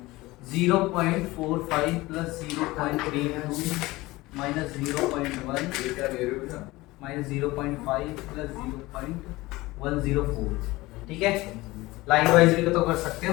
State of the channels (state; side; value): quieter; right; 20.0 dB